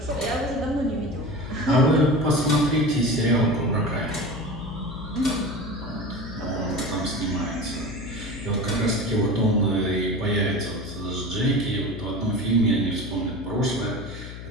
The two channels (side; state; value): left; noise; hum, 11 dB below the sound